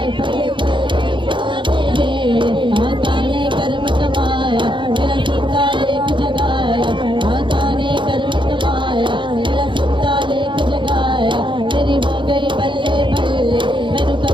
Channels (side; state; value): left; late; 0.23 ms